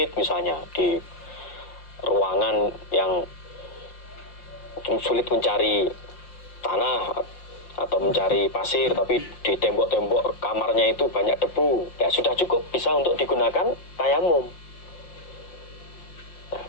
misalnya di ruangan yang sulit mencari tanah atau mencari pasir, tapi di tembok-tembok kamarnya itu banyak debu, ya sudah cukup, bisa untuk digunakan tayamum. Nah,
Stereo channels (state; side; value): late; right; 5.7 ms